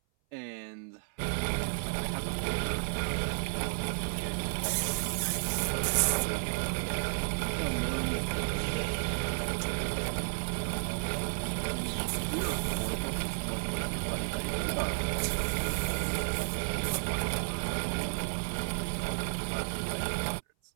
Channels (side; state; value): left; silent; 56 dB below the other